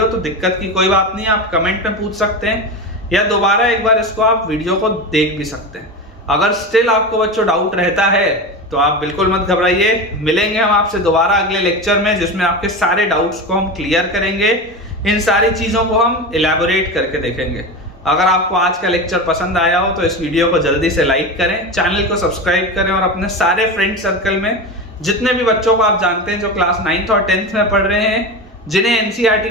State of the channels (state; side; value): normal; both; correlation 0.23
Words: तो दिक्कत की कोई बात नहीं, आप कमेंट में पूछ सकते हैं या दोबारा एक बार इसको आप वीडियो को देख भी सकते हैं। अगर स्टिल आपको बच्चों डाउट रहता है तो आप बिल्कुल मत घबराइए, मिलेंगे हम आपसे दोबारा अगले लेक्चर में जिसमें आपके सारे डाउट्स को हम क्लियर करेंगे, इन सारी चीजों को हम इलैबोरेट करके देखेंगे। अगर आपको आज का लेक्चर पसंद आया हो तो इस वीडियो को जल्दी से लाइक करें, चैनल को सब्सक्राइब करें और अपने सारे फ्रेंड सर्कल में जितने भी बच्चों को आप जानते हैं जो क्लास 9th और 10th में पढ़ रहे हैं, जिन्हें एनसीईआरटी